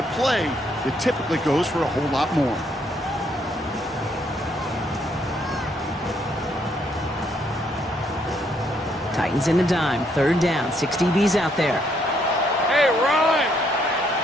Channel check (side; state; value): both; normal; correlation 0.71